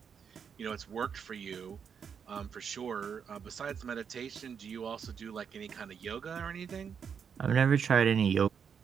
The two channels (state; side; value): quieter; left; 7.1 dB